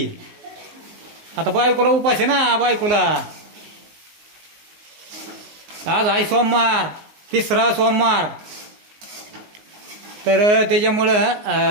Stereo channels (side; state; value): left; late; 19 ms